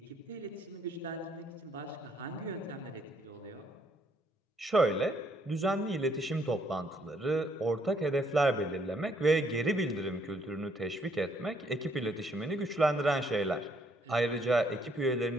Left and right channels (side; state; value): both; normal; correlation 0.69